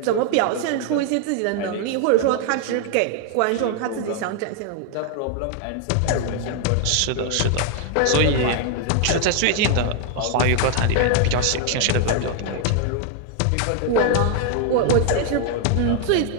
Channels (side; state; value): both; different; correlation 0.00